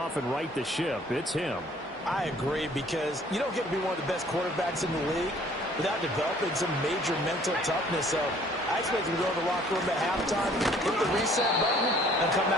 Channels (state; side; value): normal; both; correlation 0.57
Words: and right the ship, it's him. I agree, because you don't get to be one of the best quarterbacks in the league without developing some major mental toughness. So I expect him to go to the locker room at halftime, hit the reset button, and come